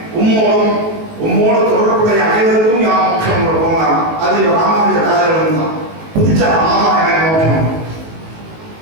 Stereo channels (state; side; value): late; left; 19 ms